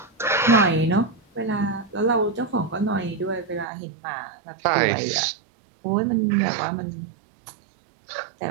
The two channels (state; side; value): drops out; left; at 3.7 s